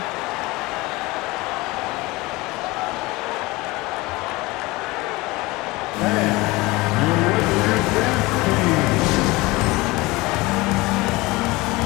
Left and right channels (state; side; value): quieter; right; 22.0 dB